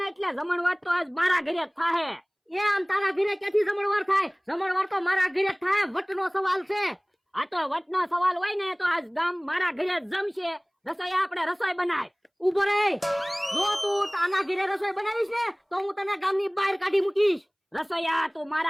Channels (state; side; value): identical; both; correlation 1.00